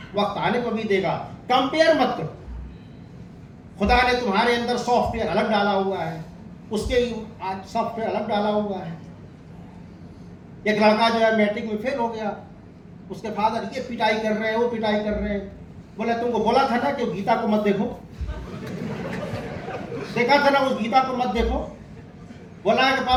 वक्त आने को भी देगा। कंपेयर मत करो। खुदा ने तुम्हारे अंदर सॉफ्टवेयर अलग डाला हुआ है, उसके सॉफ्टवेयर अलग डाला हुआ है। एक लड़का जो है मैट्रिक में फेल हो गया, उसके फादर ये पिटाई कर रहे हैं, वो पिटाई कर रहे हैं। बोला तुमको बोला था ना कि गीता को मत देखो, देखा था ना उस गीता को मत देखो। बोला है कि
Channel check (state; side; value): identical; both; correlation 1.00